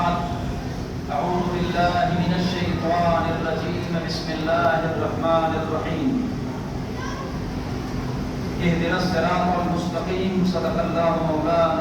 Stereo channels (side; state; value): both; identical; correlation 1.00